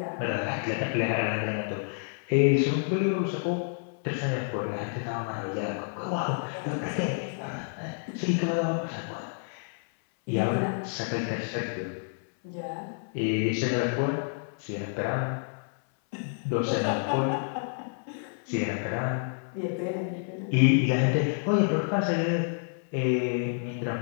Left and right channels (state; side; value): silent; right; 59 dB below the other